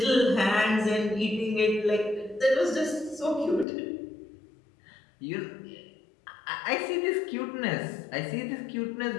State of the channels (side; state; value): right; drops out; at 3.7 s